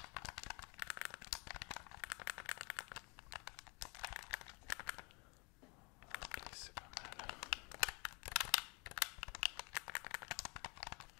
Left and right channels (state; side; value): quieter; right; 30.5 dB